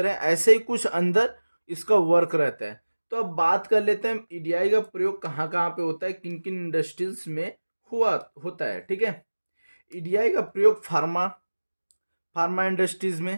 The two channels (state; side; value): inverted; both; correlation -1.00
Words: है, ऐसे ही कुछ अंदर इसका वर्क रहता है। तो अब बात कर लेते हैं ईडीआई का प्रयोग कहाँ कहाँ पे होता है, किन किन इंडस्ट्रीज में होता है। ठीक है, ईडीआई का प्रयोग फार्मा फार्मा इंडस्ट्रीज